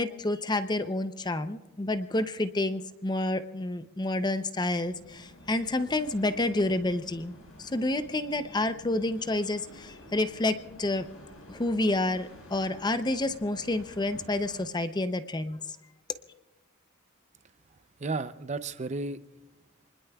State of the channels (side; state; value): both; normal; correlation 0.57